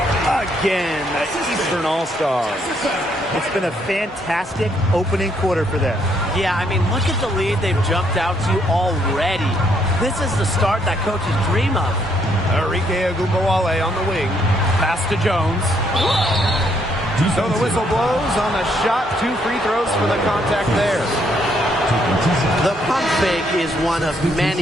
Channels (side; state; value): both; normal; correlation 0.71